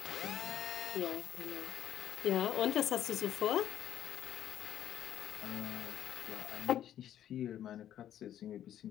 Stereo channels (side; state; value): right; quieter; 11.1 dB